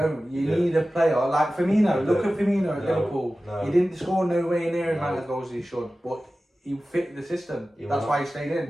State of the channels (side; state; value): both; normal; correlation 0.95